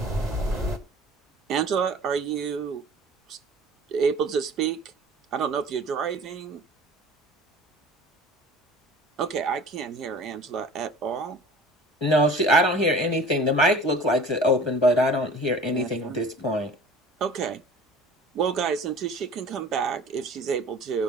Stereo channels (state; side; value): normal; both; correlation 0.44